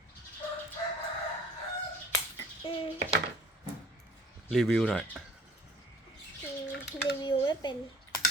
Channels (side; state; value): both; normal; correlation 0.52